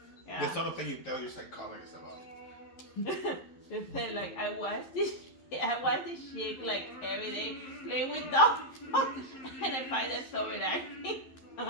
Yeah. The sort of thing you tell your psychologist about. They said like I watch this shit like every day playing with dolls, and I find that so relaxing.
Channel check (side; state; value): right; late; 11 ms